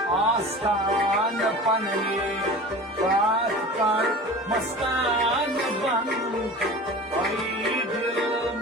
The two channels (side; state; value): both; normal; correlation 0.36